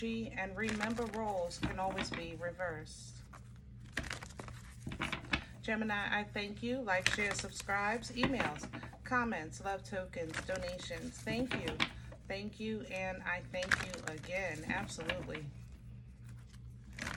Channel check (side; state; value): both; identical; correlation 1.00